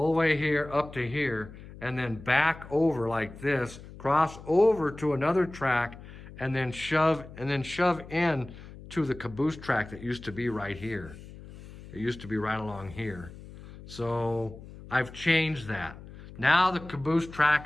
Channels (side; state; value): left; noise; hum, 16 dB below the sound